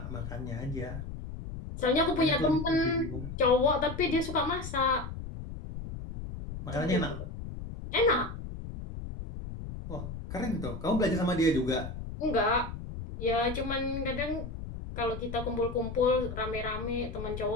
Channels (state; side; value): noise; left; rumble, 8 dB below the sound